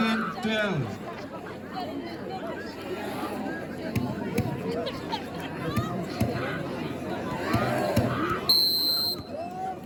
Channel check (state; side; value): identical; both; correlation 1.00